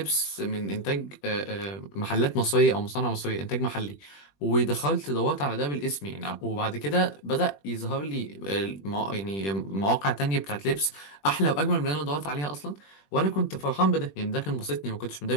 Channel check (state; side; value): late; right; 21 ms